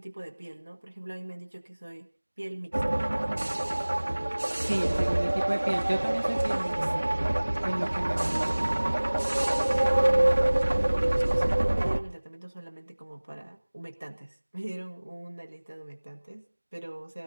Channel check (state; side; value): inverted; both; correlation -1.00